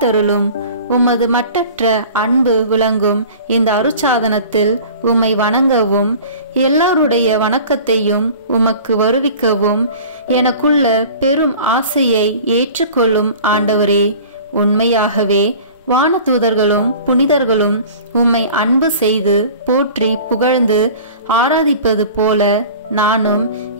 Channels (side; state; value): both; inverted; correlation -0.42